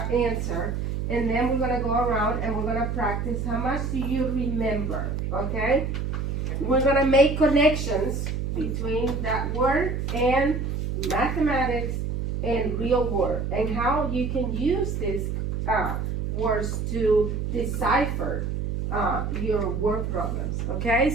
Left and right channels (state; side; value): noise; right; hum, 2 dB below the sound